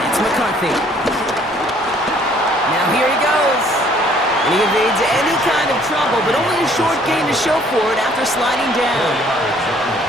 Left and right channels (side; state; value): both; normal; correlation 0.60